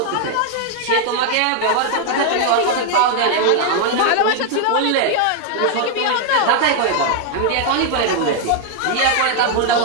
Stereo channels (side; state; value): both; different; correlation 0.00